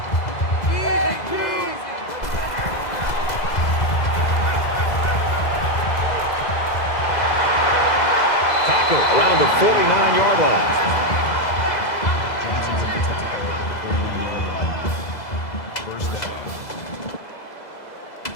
Around the 49-yard line. Johnson with the tackle at the 49-yard line. 1st down.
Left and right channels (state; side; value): late; right; 2.0 ms